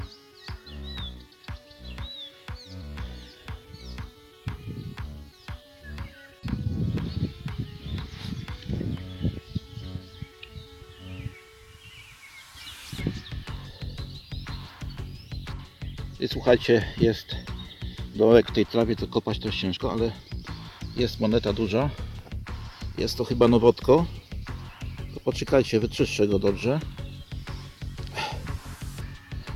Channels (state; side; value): identical; both; correlation 1.00